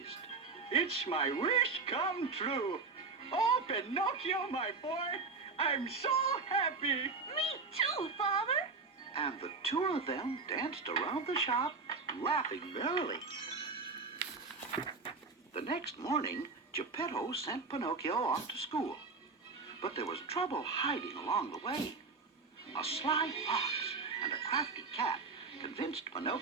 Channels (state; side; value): quieter; left; 4.4 dB